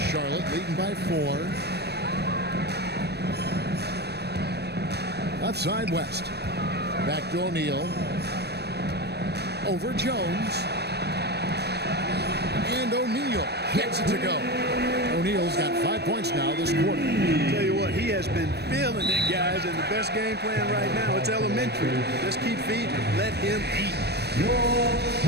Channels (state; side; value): late; left; 0.48 ms